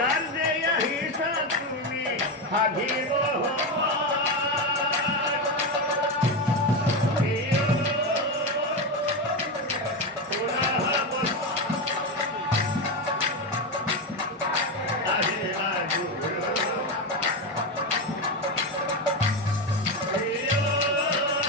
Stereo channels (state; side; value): normal; both; correlation 0.13